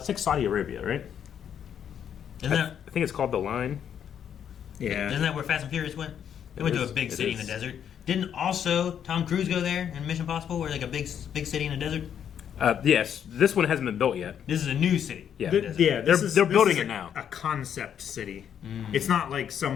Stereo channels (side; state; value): right; quieter; 8.8 dB